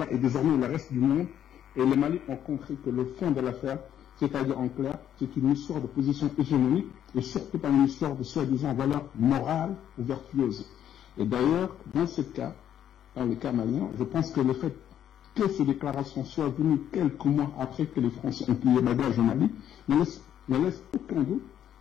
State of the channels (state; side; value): quieter; right; 10.2 dB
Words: et désormais le reste du monde et le Mali ont compris que le fond de l'affaire, c'est-à-dire en clair, c'est une histoire de position hégémonique, et surtout pas une histoire de soi-disant valeurs morales ou vertueuses. Et d'ailleurs, dans ce cas, dans le cas malien, je pense que le fait que ces déclarations soient venues quelques mois après que les Français ont plié bagage au Mali ne laisse aucun doute